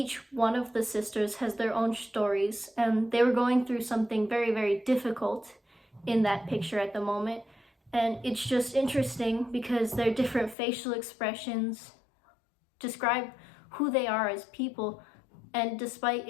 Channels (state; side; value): drops out; right; at 10.6 s